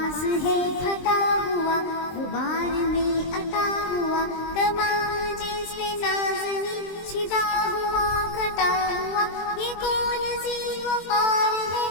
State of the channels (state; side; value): late; right; 23 ms